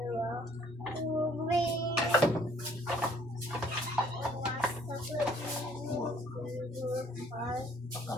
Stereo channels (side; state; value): both; normal; correlation 0.60